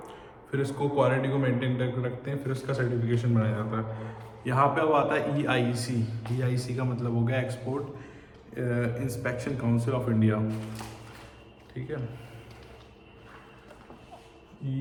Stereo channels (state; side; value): identical; both; correlation 1.00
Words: फिर इसको क्वालिटी को मेंटेन करके रखते हैं, फिर उसका सर्टिफिकेशन बनाया जाता है। यहाँ पे अब आता है EIC। EIC का मतलब हो गया export inspection council of India, ठीक है।